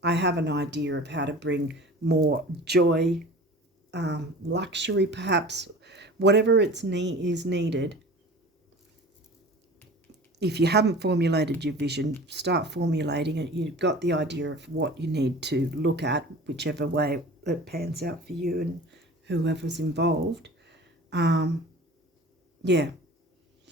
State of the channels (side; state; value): both; normal; correlation 0.40